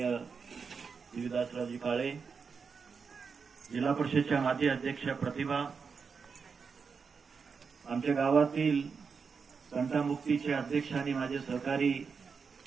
देवीदासरावजी काळे, जिल्हा परिषदेच्या माजी अध्यक्षा प्रतिभा, आमच्या गावातील तंटामुक्तीचे अध्यक्ष आणि माझे सहकारी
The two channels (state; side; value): quieter; left; 5.6 dB